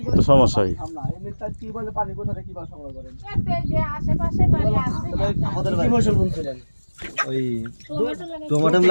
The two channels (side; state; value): both; inverted; correlation -1.00